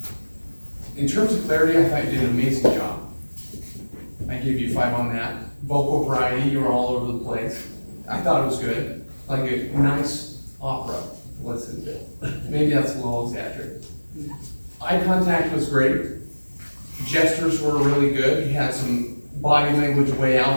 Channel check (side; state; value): both; inverted; correlation -1.00